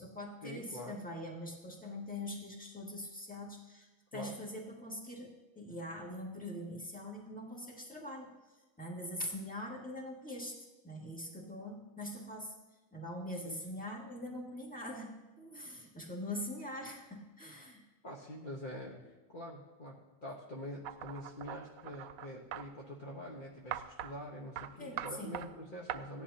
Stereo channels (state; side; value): normal; both; correlation 0.08